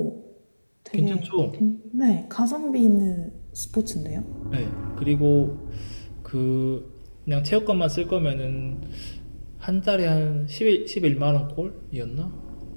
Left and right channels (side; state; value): both; inverted; correlation -1.00